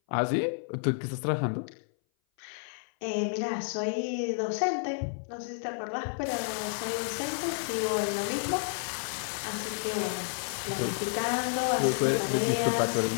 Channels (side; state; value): right; silent; 57 dB below the other